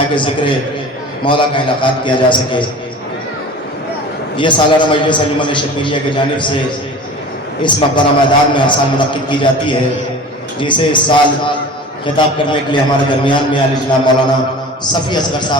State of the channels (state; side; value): normal; both; correlation 0.39